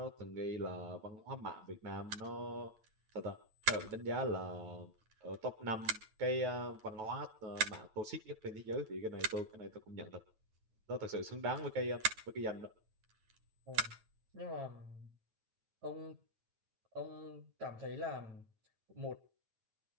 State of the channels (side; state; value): left; late; 9.2 ms